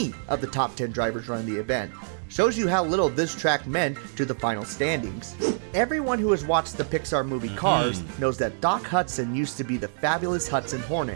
of the top 10 drivers running the event. Shows you how little this track meant to the final standings. Everyone who has watched the Pixar movie Cars knows that Doc Hudson used to be the Fabulous Hudson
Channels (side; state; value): left; silent; digital silence